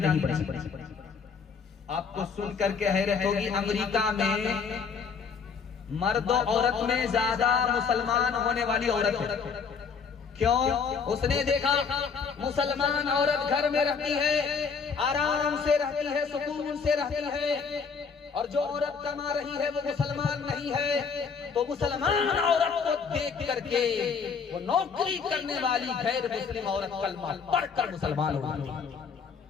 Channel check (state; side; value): quieter; right; 5.8 dB